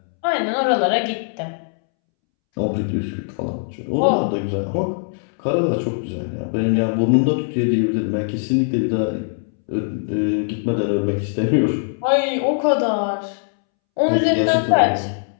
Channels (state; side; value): silent; right; 65 dB below the other